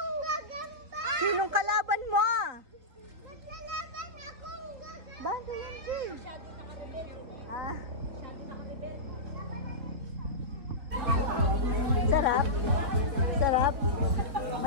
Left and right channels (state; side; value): late; left; 3.5 ms